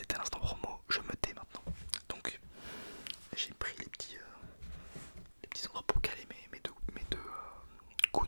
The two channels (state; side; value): inverted; both; correlation -1.00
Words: l'instant promo, je me tais maintenant. Donc j'ai pris les petits endroits pour caler mes deux